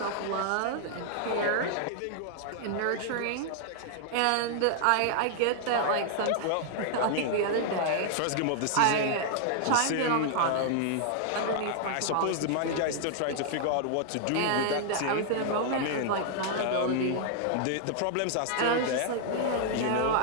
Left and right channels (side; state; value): both; different; correlation -0.01